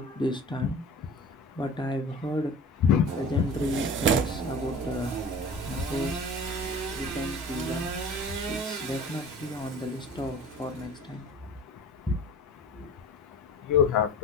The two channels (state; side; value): normal; both; correlation 0.39